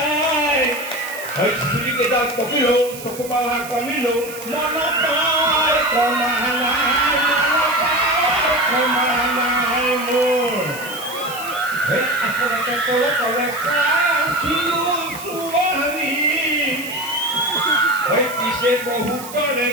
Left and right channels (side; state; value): right; noise; hiss, 13 dB below the sound